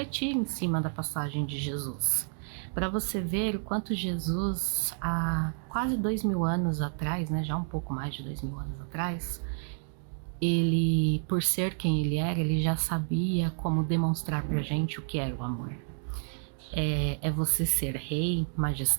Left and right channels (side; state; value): left; silent; 55 dB below the other